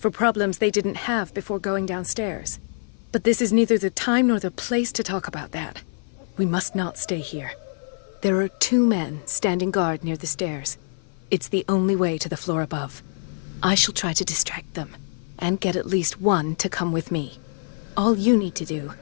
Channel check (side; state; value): right; silent; 55 dB below the other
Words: problems they didn't have before going downstairs. But this is neither the time nor the place to talk about that. We must not stay here. There are 2 men standing guard near the stairs. It's the only way to the floor above. I shall try to distract them, and get at least one to come with me. All you need to do